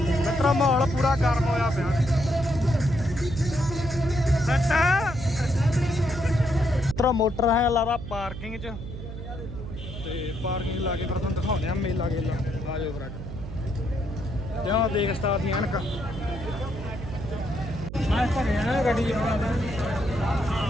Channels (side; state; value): right; noise; hum, 9 dB below the sound